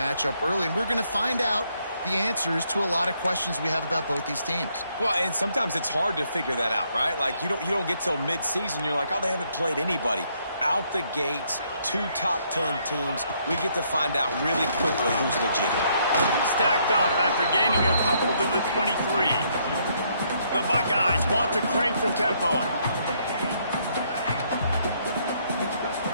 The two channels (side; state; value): both; inverted; correlation -0.71